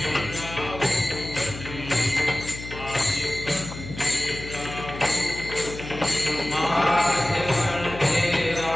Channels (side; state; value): left; noise; hum, 11 dB below the sound